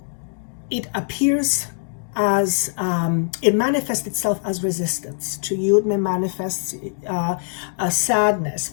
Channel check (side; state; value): right; silent; digital silence